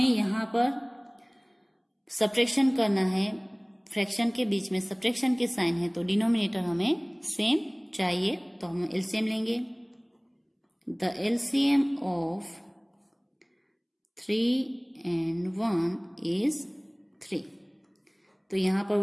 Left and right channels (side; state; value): both; identical; correlation 1.00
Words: यहाँ पर सब्ट्रैक्शन करना है, फ्रैक्शन के बीच में सब्ट्रैक्शन के साइन है तो डिनोमिनेटर हमें सेम चाहिए, तो हम एलसीएम लेंगे। The LCM of 3 and 1 is 3। तो यहाँ पर